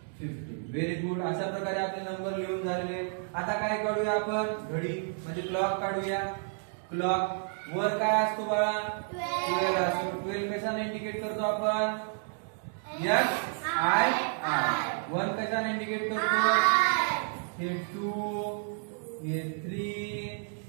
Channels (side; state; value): left; silent; 55 dB below the other